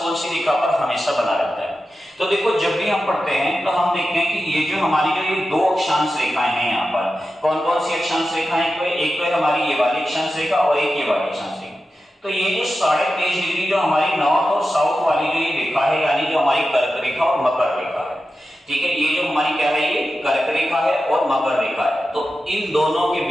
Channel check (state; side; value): normal; both; correlation 0.92